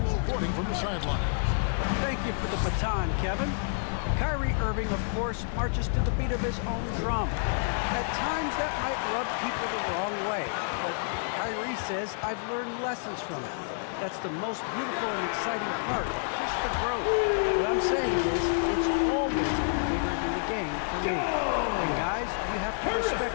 reporting from the sideline. Thank you for the baton, Kevin. Kyrie Irving, of course, marches to the beat of his own drum. At times, that might rub people the wrong way. But Kyrie says, I've learned lessons from it. That's the most beautiful and exciting part, just the growth. What I'm saying is, it's always bigger than the game for me. And guys, you have to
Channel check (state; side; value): silent; right; 59 dB below the other